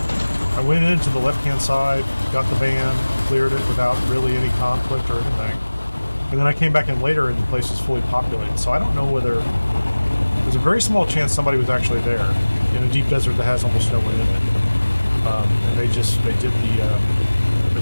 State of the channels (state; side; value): inverted; both; correlation -1.00